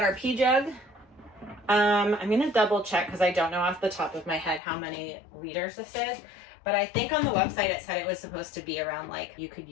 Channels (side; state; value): right; drops out; at 4.6 s